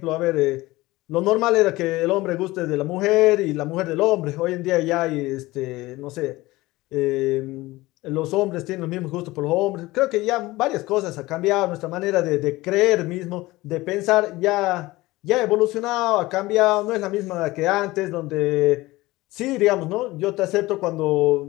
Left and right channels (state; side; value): quieter; right; 19.5 dB